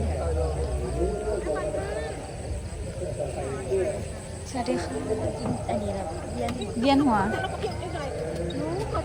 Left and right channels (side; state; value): both; identical; correlation 1.00